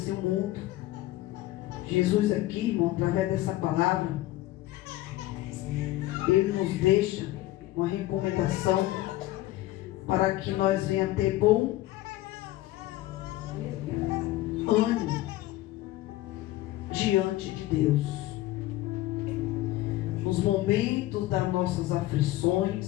o mundo. Jesus aqui, irmão, através dessa palavra, Ele nos deixa uma recomendação para que nós venhamos ter bom ânimo diante de Deus. Nos momentos das nossas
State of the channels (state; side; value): quieter; right; 16.4 dB